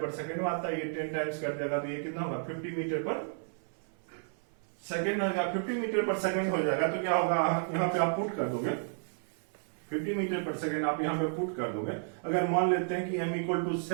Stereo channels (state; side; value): silent; left; 56 dB below the other